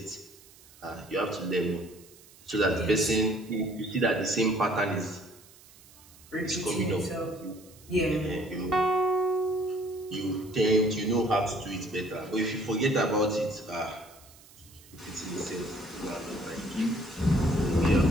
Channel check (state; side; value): noise; right; hiss, 24 dB below the sound